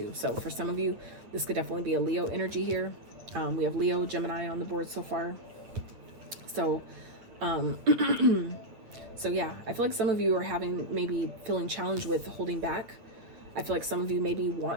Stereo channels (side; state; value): left; late; 9.4 ms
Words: So for some of you, this could definitely be a Leo energy here. We have Leo, Gemini on the board so far. So, so yeah, I feel like some of you are maybe feeling challenged with holding back. I feel like some of you maybe